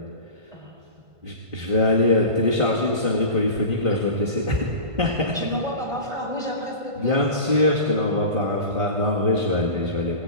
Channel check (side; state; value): left; late; 1.5 ms